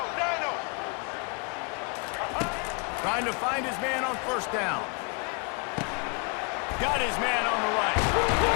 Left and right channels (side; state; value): right; quieter; 34.7 dB